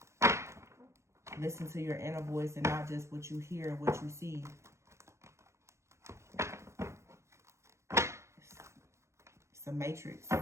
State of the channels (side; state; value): left; late; 0.14 ms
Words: Listen to your inner voice and not just what you hear and what you see. It's a matrix